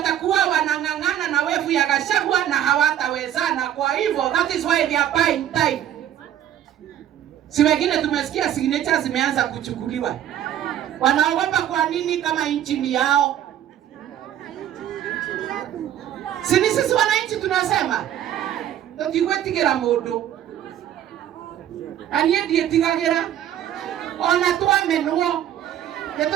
wanang'ang'ana na wevu ya Gachagua na hawatawezana. Kwa hivyo that is why they are buying time. Si wengine tumesikia signatures zimeanza kuchukuliwa. Wanaogopa kwa nini kama nchi ni yao? Si ni sisi wananchi tunasema tutigwetigera mundu. Anie ndietigagira ona twamenwo.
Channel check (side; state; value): left; quieter; 11.0 dB